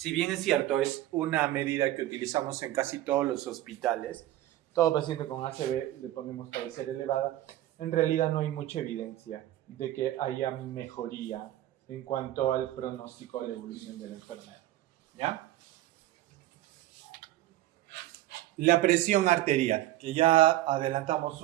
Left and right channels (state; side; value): quieter; left; 14.7 dB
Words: bien es cierto, es una medida que utilizamos en casi todos los hospitales, todo paciente con ACV le ponemos cabecera elevada, en realidad no hay mucha evidencia de que haya mejoría en cuanto al pronóstico de la evolución de la enfermedad. ¿Ya? La presión arterial, que ya adelantamos